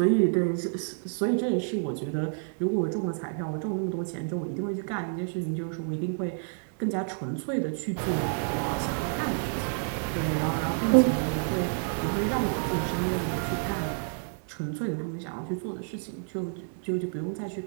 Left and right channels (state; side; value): silent; left; digital silence